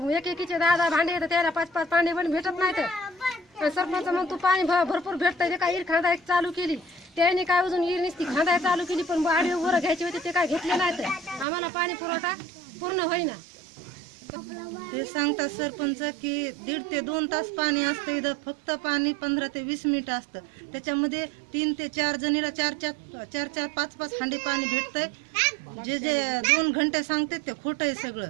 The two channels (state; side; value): drops out; left; at 11.5 s